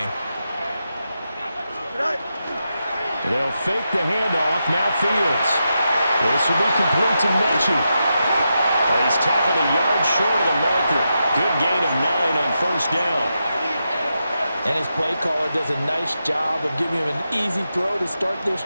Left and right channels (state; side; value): inverted; both; correlation -0.87